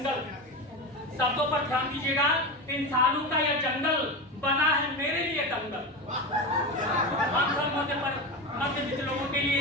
शब्दों पर ध्यान दीजिएगा, इंसानों का यह जंगल बना है मेरे लिए दंगल, हम सब मध्यवित्त लोगों के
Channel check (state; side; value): normal; both; correlation 0.21